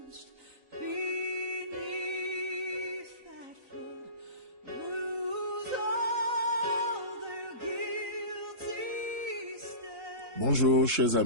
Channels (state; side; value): late; left; 3.9 ms